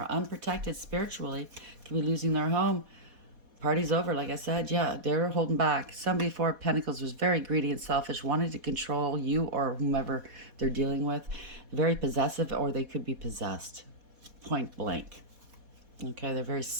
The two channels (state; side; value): late; left; 4.1 ms